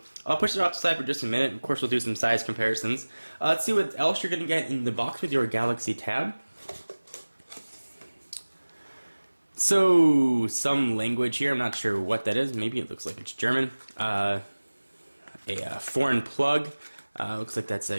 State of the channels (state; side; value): inverted; both; correlation -1.00